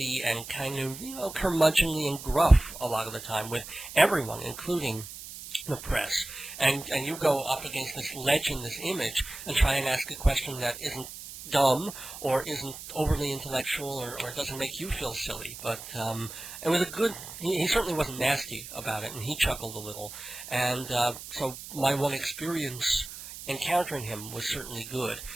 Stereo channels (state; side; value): noise; right; hiss, 12 dB below the sound